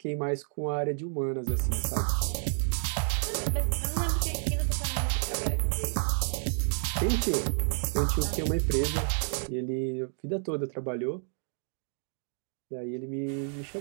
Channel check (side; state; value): left; silent; digital silence